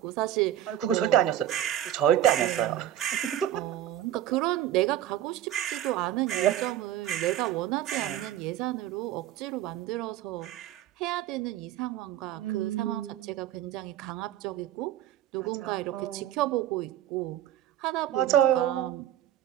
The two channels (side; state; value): left; quieter; 12.1 dB